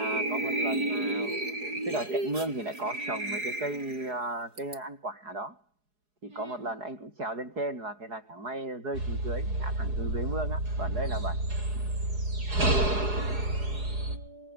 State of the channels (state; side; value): late; left; 4.8 ms